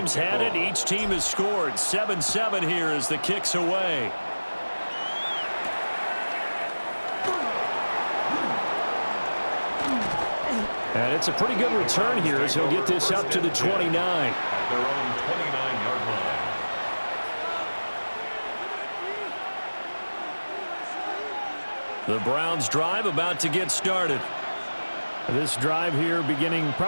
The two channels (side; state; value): both; inverted; correlation -1.00